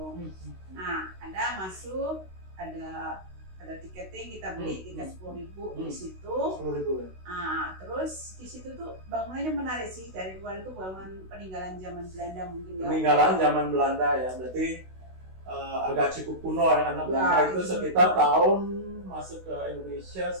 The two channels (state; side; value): late; left; 16 ms